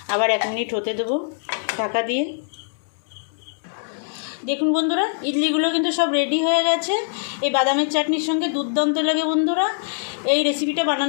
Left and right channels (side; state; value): right; silent; 62 dB below the other